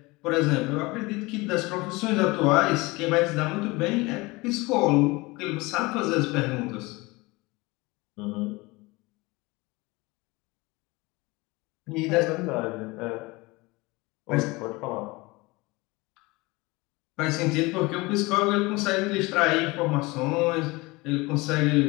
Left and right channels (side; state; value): right; quieter; 23.3 dB